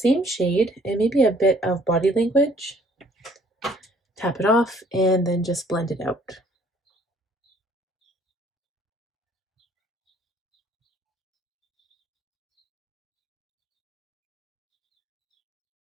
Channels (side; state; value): both; normal; correlation 0.59